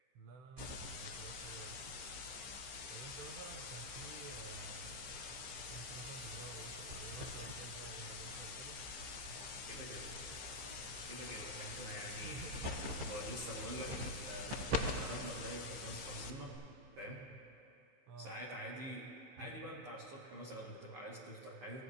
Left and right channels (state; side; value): late; left; 15 ms